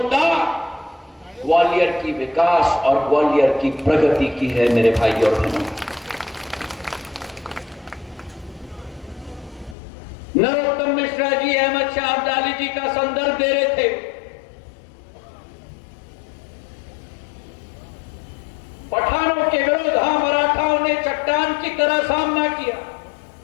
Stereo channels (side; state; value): right; drops out; at 9.8 s